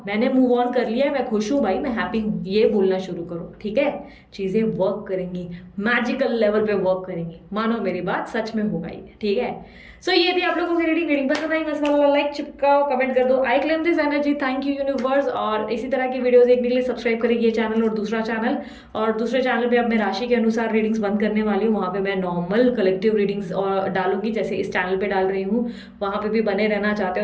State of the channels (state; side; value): identical; both; correlation 1.00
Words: मैंने मूव ऑन कर लिया है, मैं खुश हूं भाई, मैं हैप्पी हूं, ये बोलना शुरू करो, ठीक है। चीजें वर्क करेंगी, मैजिकल लेवल पे वर्क करेंगी, मानो मेरी बात सच में होगा ये, ठीक है। सो ये थी आप लोगों की रीडिंग पसंद आई मस्त वाला लाइक चिपकाओ, कमेंट कर दो, I claim this energy, thank you universe. और इसी तरह की वीडियोस देखने के लिए सब्सक्राइब करेगी ये चैनल और दूसरा चैनल, और दूसरे चैनल पे अब मैं राशि के अनुसार रीडिंग्स बंद करने वाली हूँ, वहाँ पे मैं नॉर्मल कलेक्टिव रीडिंग्स और डालूंगी जैसे इस चैनल पे डाल रही हूँ, वहाँ पे भी बने रहना चाहते